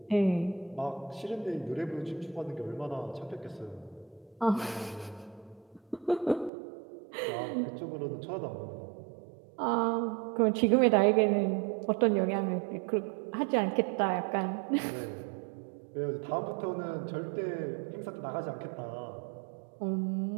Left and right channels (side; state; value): left; drops out; at 6.5 s